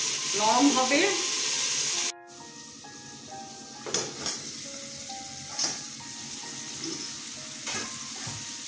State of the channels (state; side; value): identical; both; correlation 1.00